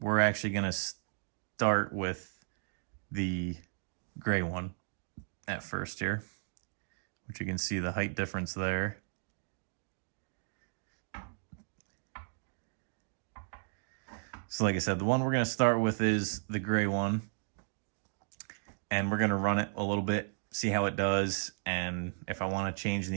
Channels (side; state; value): left; silent; digital silence